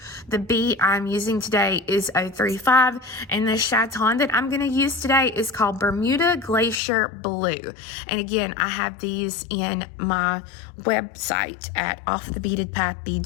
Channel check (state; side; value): drops out; right; at 6.8 s